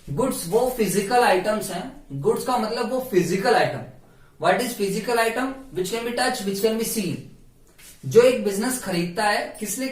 गुड्स वो फिजिकल आइटम्स हैं। गुड्स का मतलब वो physical item. What is physical item? Which can be touch, which can be seen. जो एक बिजनेस खरीदता है, किस लिए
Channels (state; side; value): identical; both; correlation 1.00